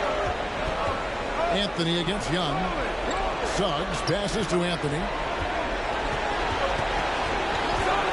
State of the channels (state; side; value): identical; both; correlation 1.00